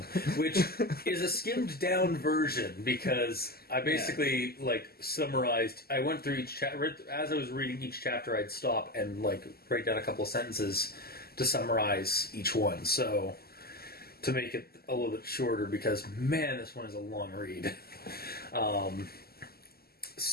which is a skimmed down version because I basically summarized. I went through each chapter. As I was reading each chapter, I'd stop and write down a couple of sentences to summarize each one. So to make it a little bit shorter, because man, this one is a long read. We'll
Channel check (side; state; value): right; late; 0.45 ms